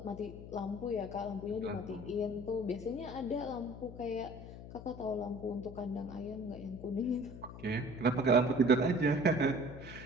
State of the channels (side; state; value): left; noise; hum, 12 dB below the sound